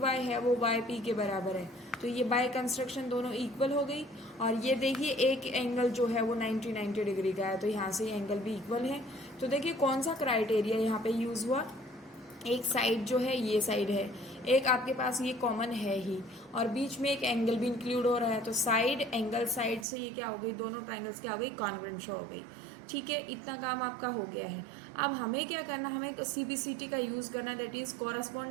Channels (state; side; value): drops out; left; at 19.9 s